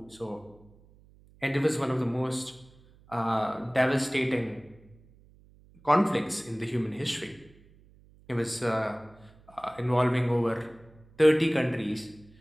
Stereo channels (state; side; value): noise; right; hum, 27 dB below the sound